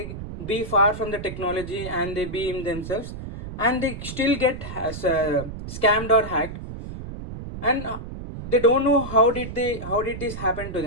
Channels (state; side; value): noise; right; rumble, 9 dB below the sound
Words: be far from the technology and they be in themselves, and they still get scammed or hacked, and they don't know how did this happen to